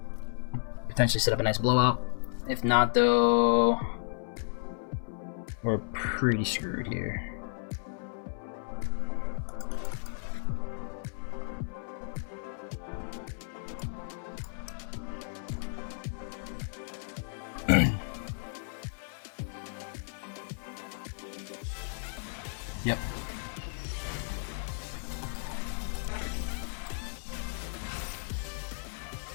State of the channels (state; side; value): silent; right; digital silence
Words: Potentially set up a nice blowout. If not, though, we're pretty screwed here. Yep.